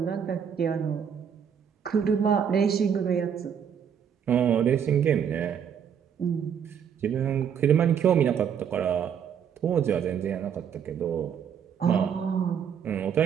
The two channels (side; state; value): left; quieter; 8.0 dB